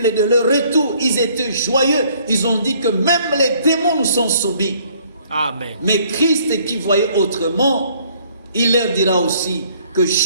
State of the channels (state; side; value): inverted; both; correlation -0.61